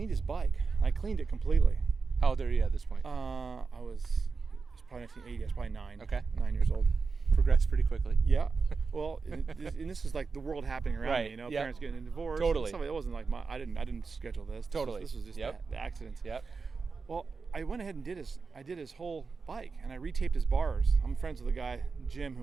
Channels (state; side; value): quieter; left; 4.7 dB